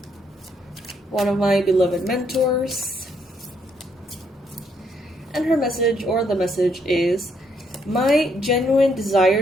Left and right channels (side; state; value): both; normal; correlation 0.72